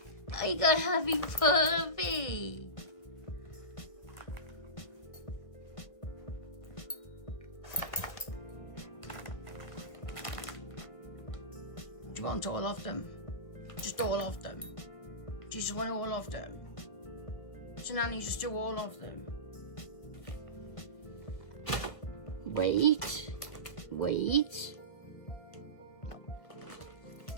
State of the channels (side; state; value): right; late; 1.3 ms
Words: I got a happy puppy. Do you want all of them? Just all of them? Do you just want all of them? So Nanny, just do all of them. Wait.